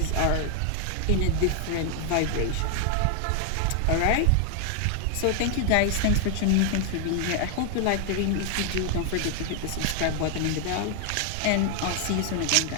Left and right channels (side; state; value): both; different; correlation 0.00